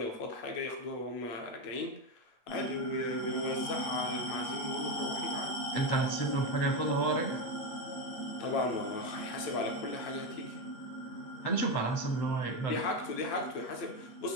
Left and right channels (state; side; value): late; right; 8.4 ms